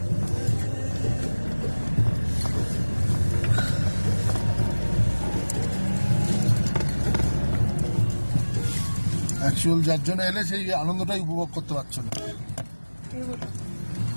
অ্যাকচুয়াল যার জন্য এলে সেই আনন্দটাই উপভোগ করতে পারছো না।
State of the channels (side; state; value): both; inverted; correlation -1.00